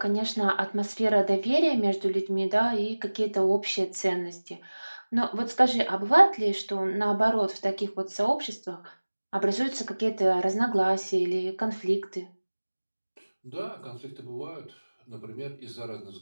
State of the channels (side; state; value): both; inverted; correlation -1.00